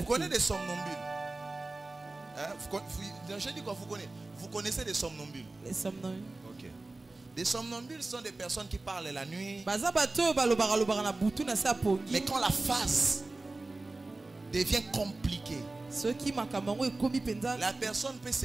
connaissez des somnambules? Je dis quoi, vous connaissez des somnambules? Les somnambules. Ok. Des somnambules sont des personnes qui parlent la nuit. Mais quand la phase devient compliquée, la personne peut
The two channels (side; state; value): left; quieter; 3.2 dB